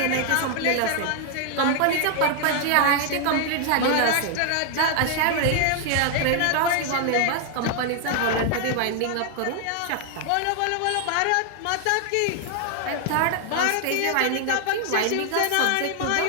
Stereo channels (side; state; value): both; different; correlation 0.00